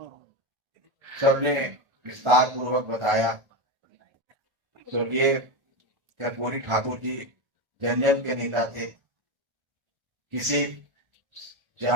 सबने विस्तार पूर्वक बताया, स्वर्गीय कर्पूरी ठाकुर जी जन जन के नेता थे, किसी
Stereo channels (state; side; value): late; left; 1.4 ms